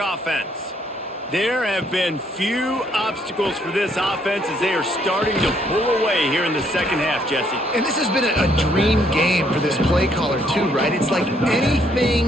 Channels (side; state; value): both; normal; correlation 0.69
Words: There have been few obstacles for this offense as they are starting to pull away here in the second half, Jesse. And this has been a dream game for this play caller too, right? It's like